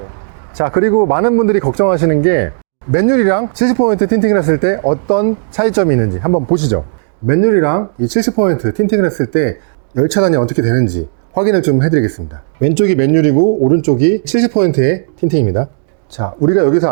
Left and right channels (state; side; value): silent; left; digital silence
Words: 자, 그리고 많은 분들이 걱정하시는 게 맨유리랑 70% 틴팅을 했을 때 어떤 차이점이 있는지 한번 보시죠. 맨유리랑 이 70% 틴팅을 했을 때 열차단이 어떻게 되는지 확인을 좀 해드리겠습니다. 왼쪽이 맨유리고 오른쪽이 70%의 틴팅입니다. 자, 우리가 여기서